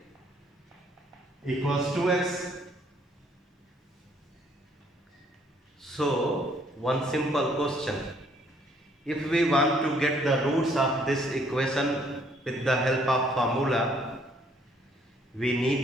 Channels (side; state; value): both; normal; correlation 0.64